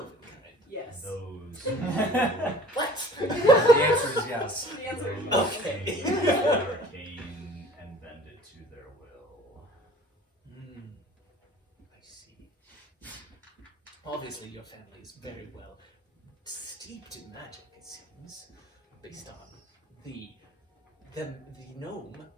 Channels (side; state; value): both; normal; correlation 0.47